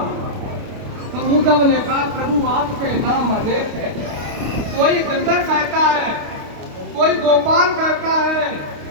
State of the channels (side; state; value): left; late; 29 ms